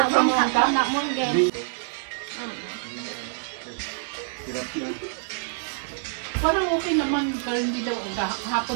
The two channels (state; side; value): silent; left; digital silence